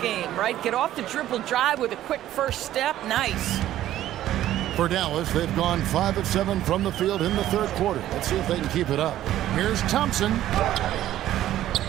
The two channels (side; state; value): left; quieter; 13.1 dB